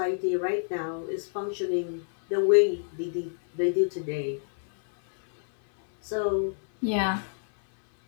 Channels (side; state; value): right; silent; 60 dB below the other